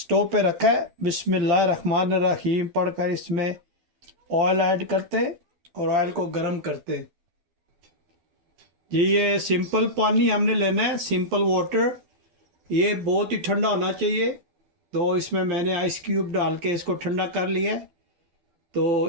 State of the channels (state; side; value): late; left; 12 ms